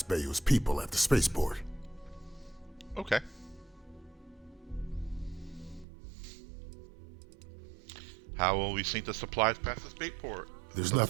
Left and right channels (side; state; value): left; drops out; at 5.9 s